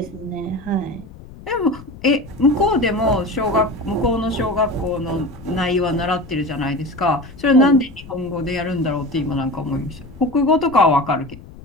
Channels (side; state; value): left; noise; rumble, 18 dB below the sound